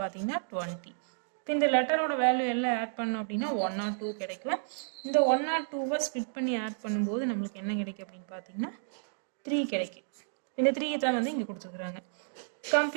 20. இப்போ இந்த லெட்டரோட வேல்யூ எல்லாம் ஆட் பண்ணோம் அப்படின்னா 102 கிடைக்கும். இந்த 102 ஸ்ப்ளிட் பண்ணி ஆட் பண்ணும்போது நம்மளுக்கு என்ன கிடைக்கும் அப்படின்னு பார்த்தீங்கன்னா 3 கிடைக்கும். இந்த 3 தான் வந்து இங்கே கொடுத்துருக்குறாங்க.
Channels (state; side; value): silent; left; digital silence